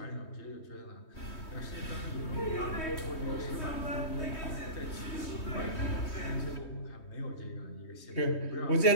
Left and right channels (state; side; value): late; right; 3.2 ms